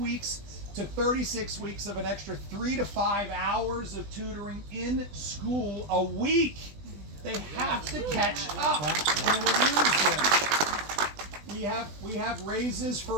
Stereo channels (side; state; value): left; late; 20 ms